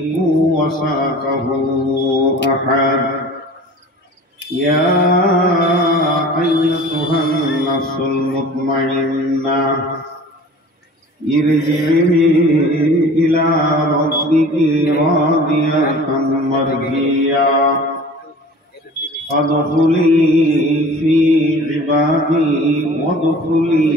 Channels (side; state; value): both; normal; correlation 0.43